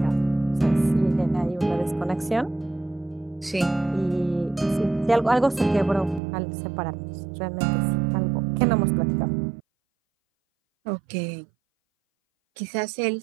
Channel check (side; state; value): left; drops out; at 6.2 s